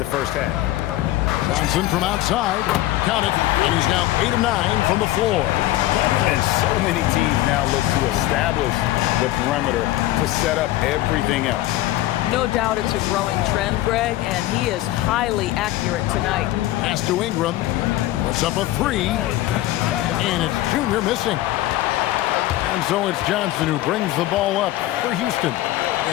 first half. Johnson from outside. Count it. And he's now 8 of 9 from the floor. And so many teams now look to establish the perimeter to set up everything else. No doubt it's a growing trend, Greg, and he is highly accurate tonight. Pass to Ingram. Puts up a 3. And it's Junior missing. And so it's Johnson who brings the ball up for Houston.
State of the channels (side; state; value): right; quieter; 15.6 dB